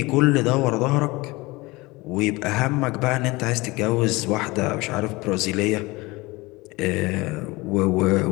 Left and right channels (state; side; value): quieter; right; 22.5 dB